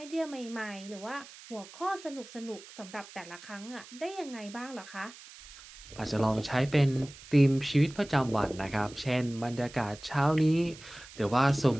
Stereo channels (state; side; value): noise; right; hiss, 18 dB below the sound